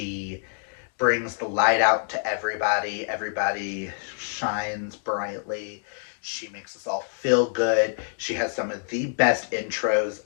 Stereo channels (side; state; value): right; silent; digital silence